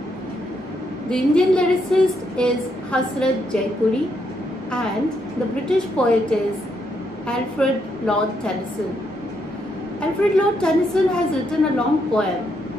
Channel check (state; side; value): normal; both; correlation 0.77